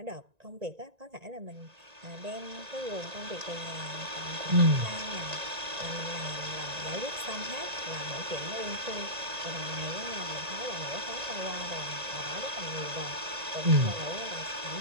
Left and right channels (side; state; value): left; late; 1.9 ms